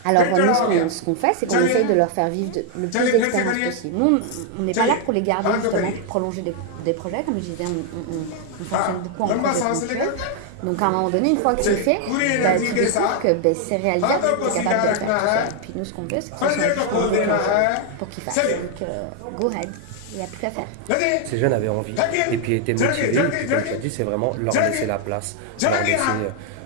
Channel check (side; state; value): both; different; correlation 0.00